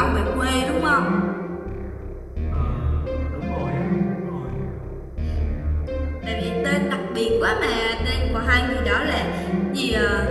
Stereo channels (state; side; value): identical; both; correlation 1.00